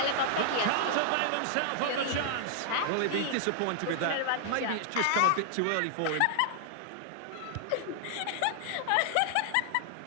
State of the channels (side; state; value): both; different; correlation -0.01